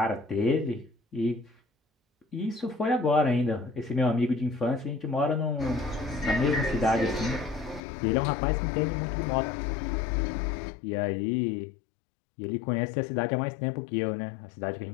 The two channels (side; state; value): right; drops out; at 7.8 s